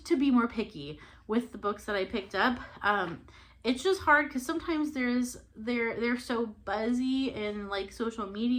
to be more picky with the books that I picked up. It's just hard because sometimes they're so buzzy in social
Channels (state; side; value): identical; both; correlation 1.00